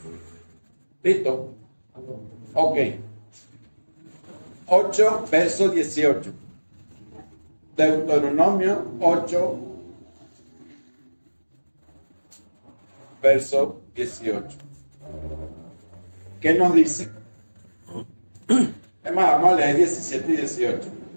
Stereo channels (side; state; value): both; inverted; correlation -1.00